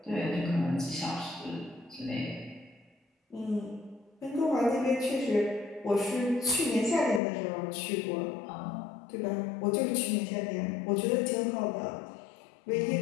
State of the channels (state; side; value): drops out; right; at 7.2 s